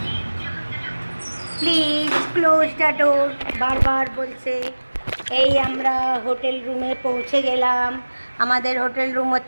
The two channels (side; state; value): both; inverted; correlation -1.00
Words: please close the door, বারবার বলছে। এই আমরা হোটেল রুমে পৌঁছে গেলাম। আমাদের হোটেল রুম